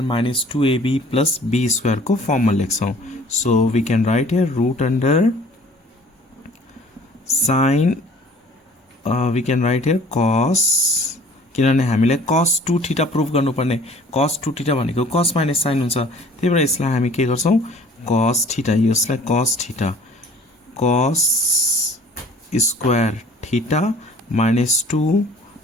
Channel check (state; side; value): normal; both; correlation 0.51